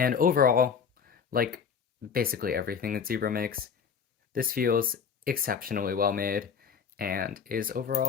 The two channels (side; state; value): right; quieter; 6.6 dB